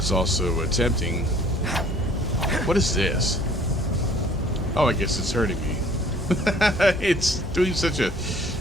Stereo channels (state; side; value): normal; both; correlation 0.55